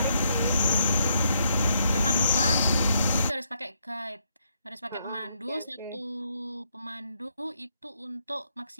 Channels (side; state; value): both; inverted; correlation -0.75